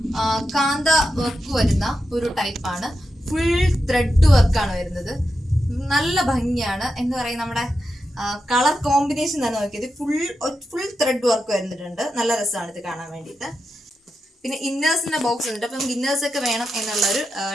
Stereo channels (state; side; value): normal; both; correlation 0.88